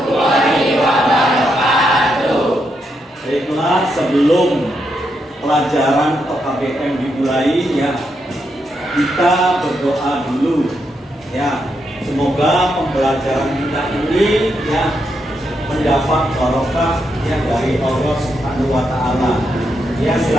wabarakatuh. Baiklah, sebelum pelajaran atau KBM dimulai ya, kita berdoa dulu ya. Semoga pembelajaran kita ini ya mendapat barokah ya dari Allah Subhanahu wa taala. Ya,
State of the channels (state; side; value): normal; both; correlation 0.81